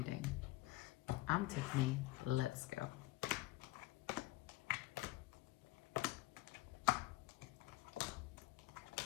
I'm Tiffany. Let's go.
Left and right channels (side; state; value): right; quieter; 18.2 dB